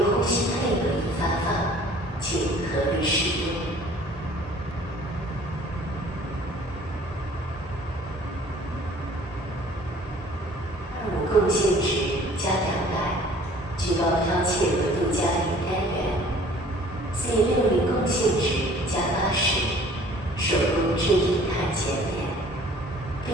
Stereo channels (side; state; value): both; normal; correlation 0.52